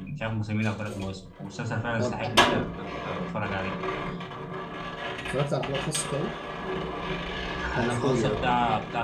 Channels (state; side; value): identical; both; correlation 1.00